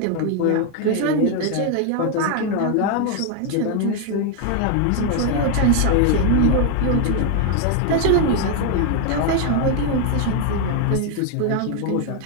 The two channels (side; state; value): both; different; correlation 0.00